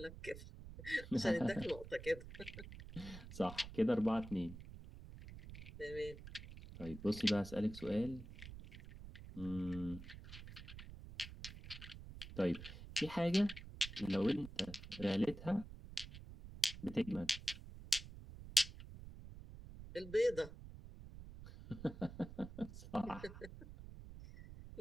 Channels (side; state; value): right; noise; rumble, 13 dB below the sound